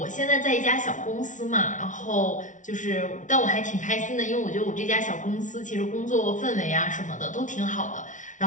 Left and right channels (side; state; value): right; late; 0.37 ms